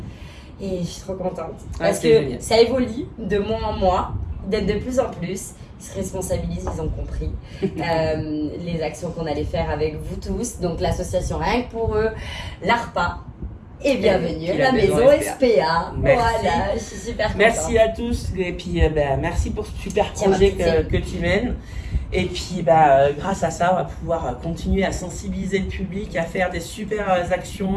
Et je suis trop contente parce que génial. Ça évolue de mois en mois, d'être de plus en plus. Ils se responsabilisent, ils ont compris les actions qu'on allait faire avec vous tous. Donc l'association Rien que pour eux, l'ARPA et bienvenue à la maison SPA. Voilà, je suis super contente. Merci à tous et puis merci pour ce super projet que tu mènes. Et puis grâce à ça, on va pouvoir continuer à sensibiliser le public, à faire des super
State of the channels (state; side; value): identical; both; correlation 1.00